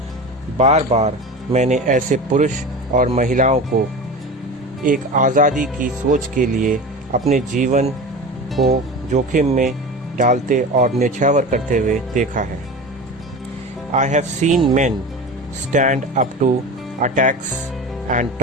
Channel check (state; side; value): normal; both; correlation 0.31